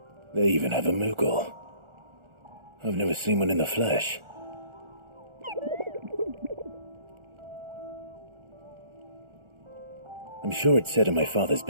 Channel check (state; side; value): late; left; 1.4 ms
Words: They even have a Moogle. I've never seen one in the flesh. I'm sure it said in my father's